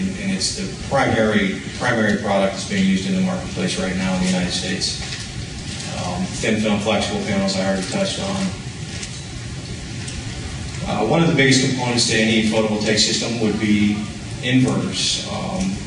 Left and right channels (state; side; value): identical; both; correlation 1.00